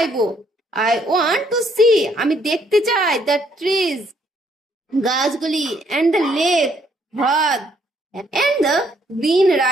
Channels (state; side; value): normal; both; correlation 0.69